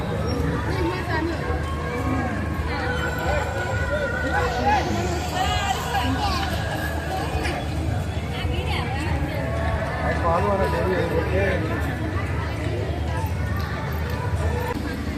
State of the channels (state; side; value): identical; both; correlation 1.00